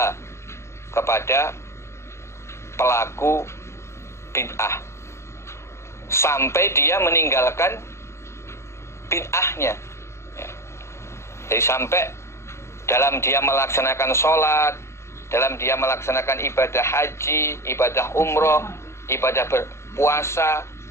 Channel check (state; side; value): late; right; 0.13 ms